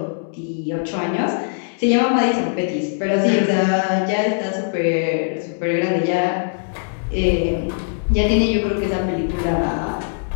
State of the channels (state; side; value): silent; right; digital silence